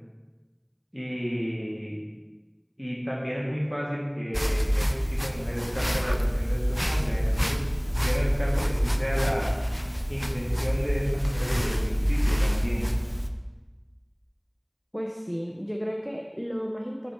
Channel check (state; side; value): identical; both; correlation 1.00